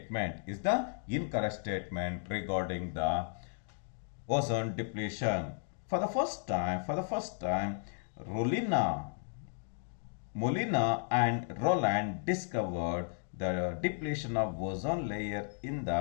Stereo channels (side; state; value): right; silent; digital silence